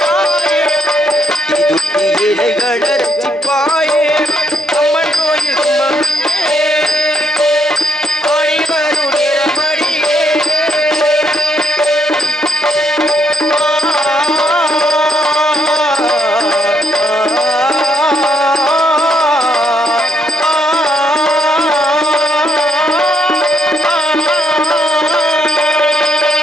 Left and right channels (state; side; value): normal; both; correlation 0.74